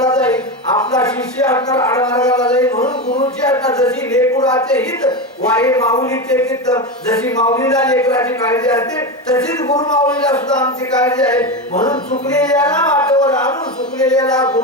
जाईल. आपला शिष्य असणार आडमार्गाला जाईल. म्हणून गुरुची असणार जशी लेकराचे हित वाई माऊलीचे चित्त जशी माऊलीला लेकराची काळजी असते तशीच गुरु माऊलीला सुद्धा आमची काळजी आहे. म्हणून चुकलेल्याला वाटेवर आणून चुकलेल्याला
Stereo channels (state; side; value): normal; both; correlation 0.17